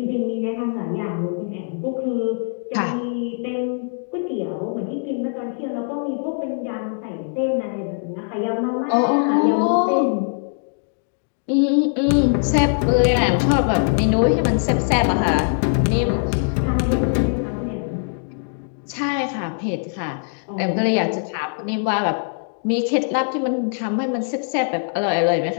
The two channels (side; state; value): right; silent; digital silence